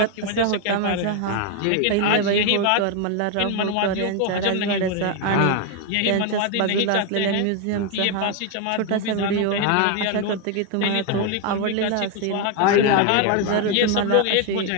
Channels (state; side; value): different; both; correlation 0.01